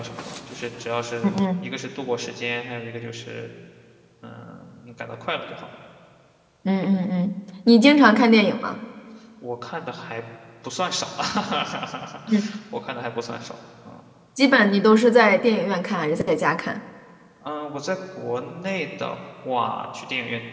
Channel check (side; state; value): both; identical; correlation 1.00